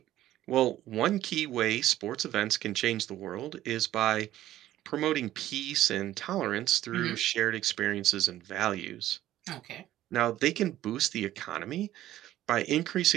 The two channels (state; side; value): quieter; left; 13.7 dB